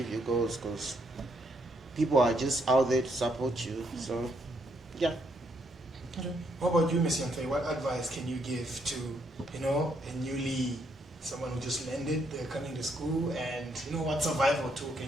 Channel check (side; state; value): both; normal; correlation 0.73